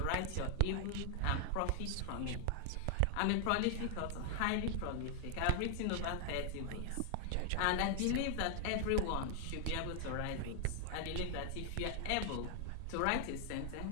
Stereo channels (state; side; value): different; both; correlation 0.00